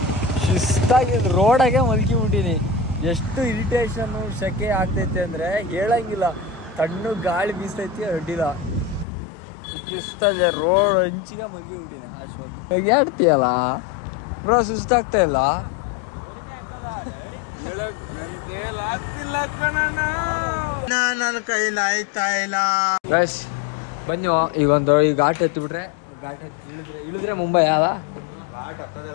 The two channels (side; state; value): right; drops out; at 9.1 s